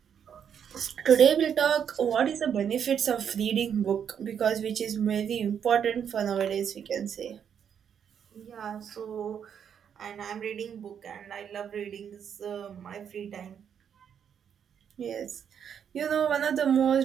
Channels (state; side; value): quieter; left; 8.1 dB